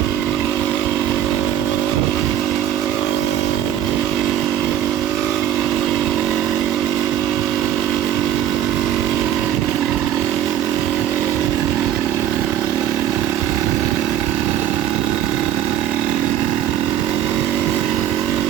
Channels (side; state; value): left; quieter; 11.1 dB